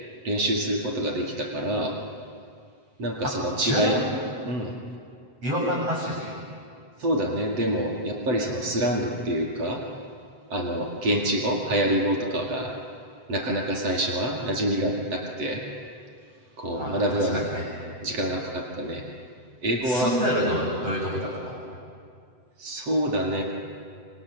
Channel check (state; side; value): late; left; 7.8 ms